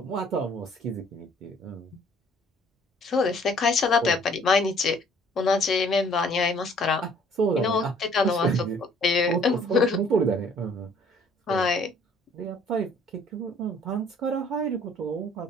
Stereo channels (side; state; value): both; normal; correlation 0.58